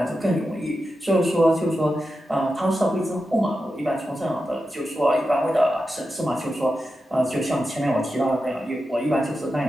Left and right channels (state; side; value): normal; both; correlation 0.90